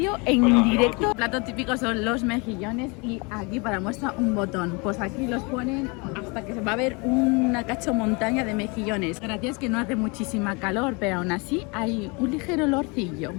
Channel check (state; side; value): quieter; right; 29.6 dB